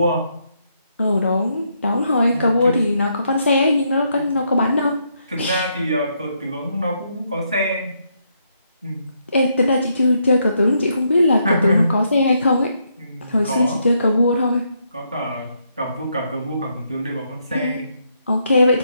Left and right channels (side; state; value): both; inverted; correlation -0.76